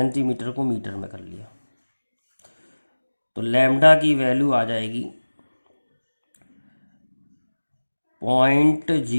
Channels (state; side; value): inverted; both; correlation -1.00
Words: को मीटर में कर लिया, तो लैम्डा की वैल्यू आ जाएगी